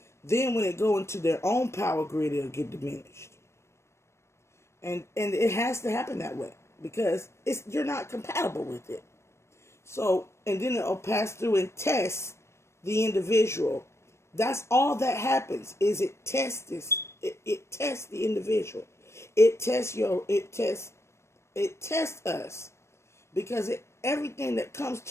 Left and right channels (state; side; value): late; right; 0.13 ms